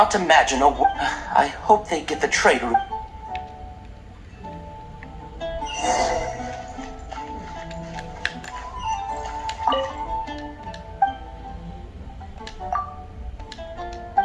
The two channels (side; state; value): both; identical; correlation 1.00